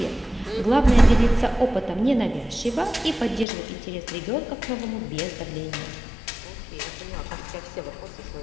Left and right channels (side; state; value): right; drops out; at 3.5 s